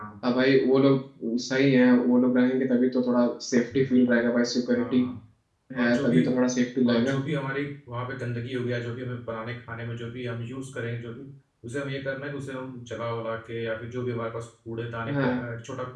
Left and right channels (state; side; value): identical; both; correlation 1.00